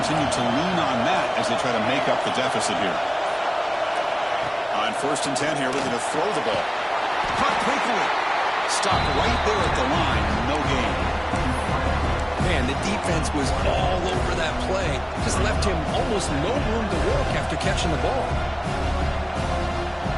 to lean on that as they try to make up the deficit here. On 1st and 10 here, looking to throw the ball. Caught quickly. Stopped right there at the line. No gain. Man, the defense was all over that play. Just left him almost no room to work after catching the ball.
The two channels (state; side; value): identical; both; correlation 1.00